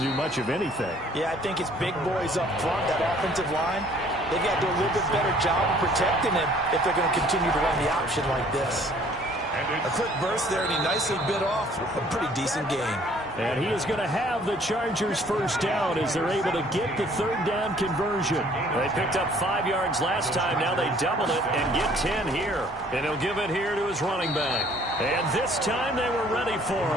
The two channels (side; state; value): both; normal; correlation 0.57